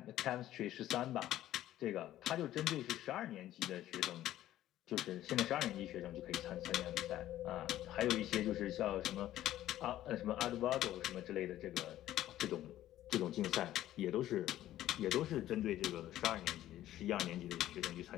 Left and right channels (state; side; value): quieter; right; 13.5 dB